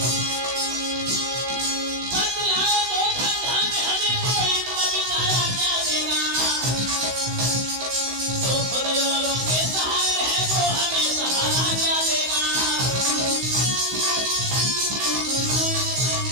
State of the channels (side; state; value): left; late; 16 ms